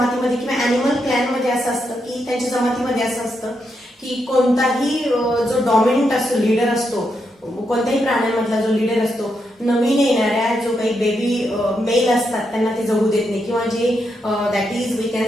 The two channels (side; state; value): both; normal; correlation 0.82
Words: किंवा एनिमल क्लॅन मध्ये असं असतं की त्यांच्या जमातीमध्ये असं असतं की कोणताही जो डॉमिनंट असतो, लीडर असतो, कोणत्याही प्राण्यांमधला जो लीडर असतो, नवीन येणाऱ्या जो काही बेबी मेल असतात त्यांना ते जगू देत नाही, किंवा जे that is we